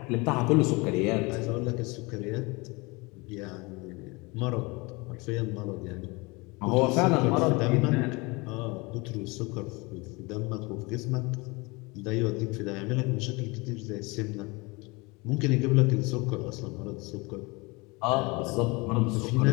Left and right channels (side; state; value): right; quieter; 26.0 dB